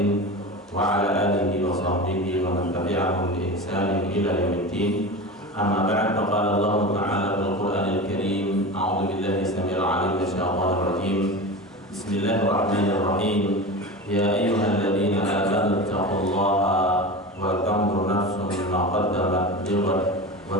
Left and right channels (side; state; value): both; normal; correlation 0.28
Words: wa ala alihi wa sahbihi wa man tabi'ahum bi ihsanin ila yaumiddin. Amma ba'd, faqala Allah Ta'ala fil Qur'anil Karim. A'udzu billahi samil 'alim minasyaitonir rajim. Bismillahirrahmanirrahim. Ya ayyuhalladzina amanu taqullaha wa tanzur nafsun ma qaddamat lighad